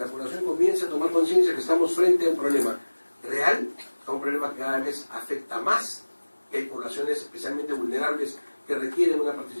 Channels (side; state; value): both; inverted; correlation -1.00